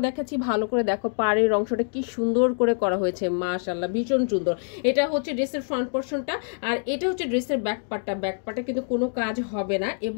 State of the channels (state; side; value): silent; right; 61 dB below the other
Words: দেখাচ্ছি, ভালো করে দেখো পাড়ের অংশটা কি সুন্দর করে করা হয়েছে, মাশাআল্লাহ ভীষণ সুন্দর। এটা হচ্ছে ড্রেসের ফ্রন্ট পোরশনটা, আর এটা হচ্ছে ড্রেসের ব্যাক পার্টটা কিন্তু কোনো কাজ হবে না।